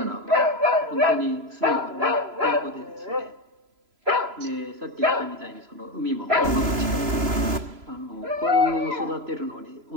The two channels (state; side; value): late; left; 3.0 ms